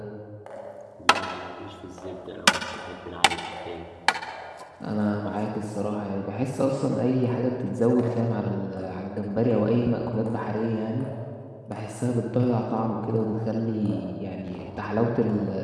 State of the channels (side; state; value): both; identical; correlation 1.00